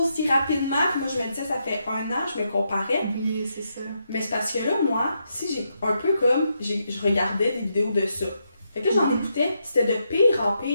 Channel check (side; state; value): both; inverted; correlation -0.81